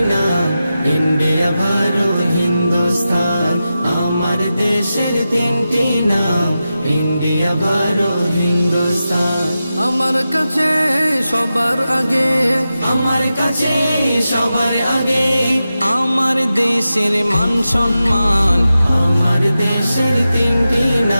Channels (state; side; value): inverted; both; correlation -0.92